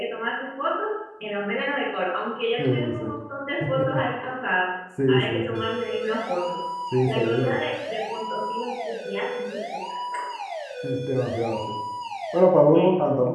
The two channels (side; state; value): both; identical; correlation 1.00